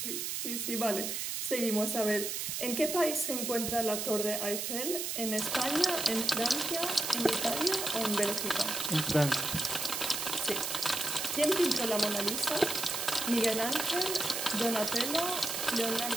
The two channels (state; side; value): noise; right; hiss, 2 dB below the sound